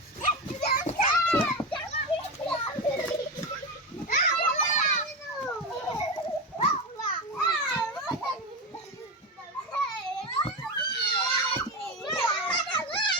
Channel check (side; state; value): both; normal; correlation 0.18